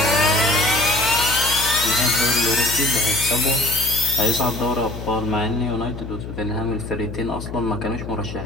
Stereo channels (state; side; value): noise; left; hum, 9 dB below the sound